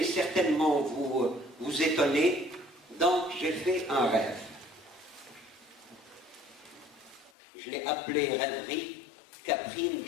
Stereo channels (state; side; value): drops out; right; at 7.3 s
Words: certainement vous étonner. Donc, j'ai fait un rêve. Je l'ai appelé Rêverie Caprine